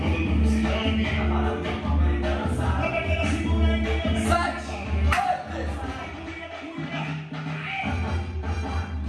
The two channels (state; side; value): identical; both; correlation 1.00